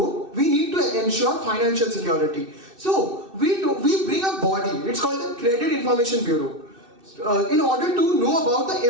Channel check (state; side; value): late; left; 2.6 ms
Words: we need to ensure financial security. So we bring a body. It's called the Credit Information Bureau, in order to know about